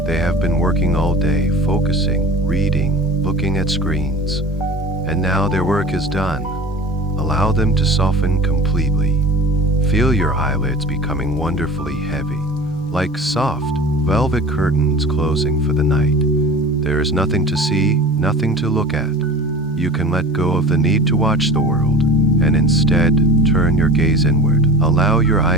They have been working all day, focusing, reading, looking at screens. And now their work is done. Allow them to soften completely. Feel your eyelids becoming wonderfully heavy, like soft, velvet curtains closing for the night. There is nothing to see, nothing to look at. You can let go of the need to watch the world, and instead turn your gaze inward. Allow your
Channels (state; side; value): normal; both; correlation 0.37